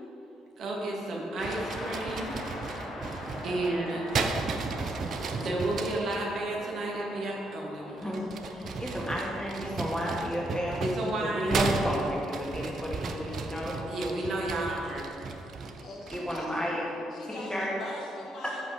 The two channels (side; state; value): both; normal; correlation 0.77